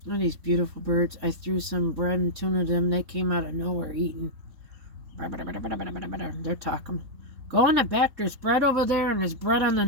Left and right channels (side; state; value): left; late; 3.7 ms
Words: Look at these beautiful birds. I threw some bread and tuna to them. They came out of nowhere eating. They're talking. Go in the back. There's bread over there, and there's bread on the